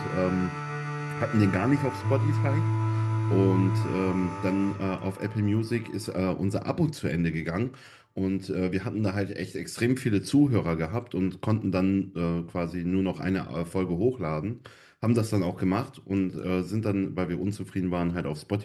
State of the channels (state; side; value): identical; both; correlation 1.00